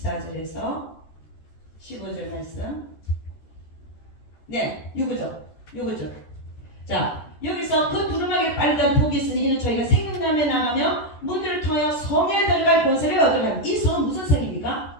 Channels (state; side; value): late; right; 14 ms